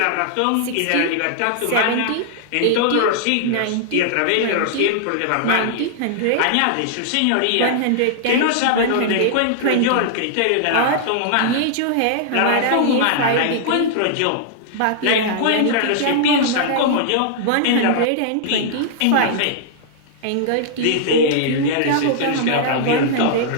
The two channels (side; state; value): both; different; correlation -0.01